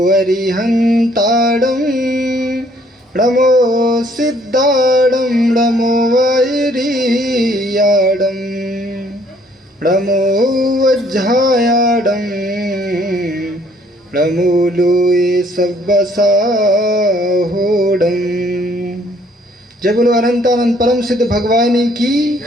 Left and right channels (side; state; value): both; normal; correlation 0.63